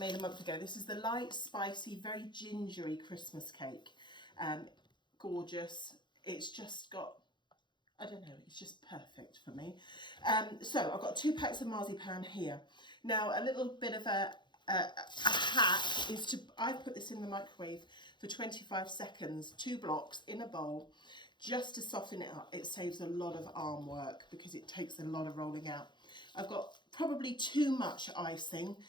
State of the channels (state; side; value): late; right; 0.22 ms